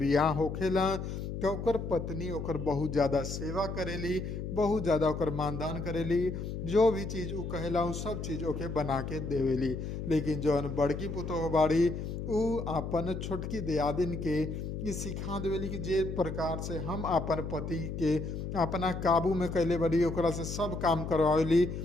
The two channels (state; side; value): noise; left; hum, 5 dB below the sound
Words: होखेला तो ओकर पत्नी ओकर बहुत ज़्यादा सेवा करेली, बहुत ज़्यादा ओकर मानदान करेली। जो भी चीज़ उ कहेला उ सब चीज़ ओके बना के देवेली। लेकिन जौन बड़की पुतोह बाड़ी उ अपन छोटकी दियादिन के ये सिखा देवेली कि जे प्रकार से हम अपन पति के अपना काबू में कैले बड़ी, ओकरा से सब काम करवावेली,